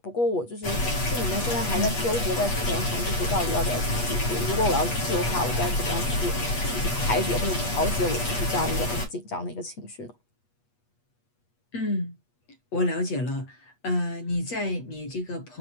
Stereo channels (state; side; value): late; right; 8.3 ms